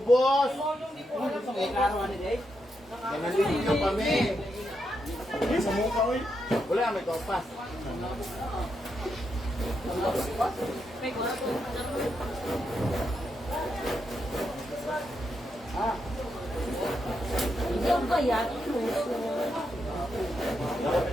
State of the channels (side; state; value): both; normal; correlation 0.83